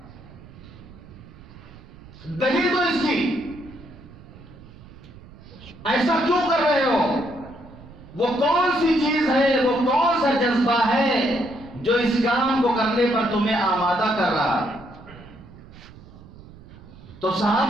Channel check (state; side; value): noise; right; rumble, 19 dB below the sound